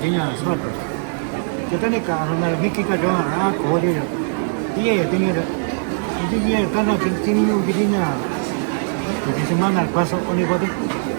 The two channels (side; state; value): left; silent; digital silence